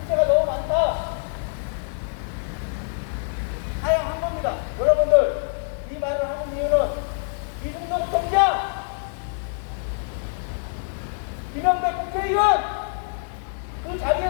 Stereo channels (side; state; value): right; silent; digital silence